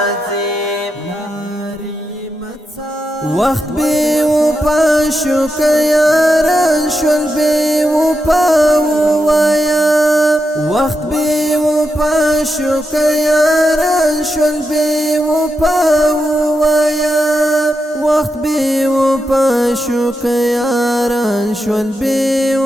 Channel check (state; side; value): normal; both; correlation 0.86